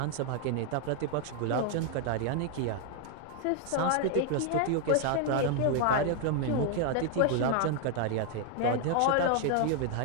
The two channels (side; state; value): both; different; correlation 0.00